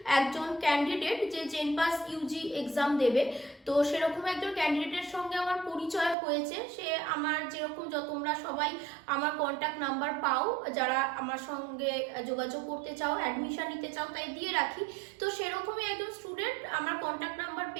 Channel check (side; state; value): left; drops out; at 6.2 s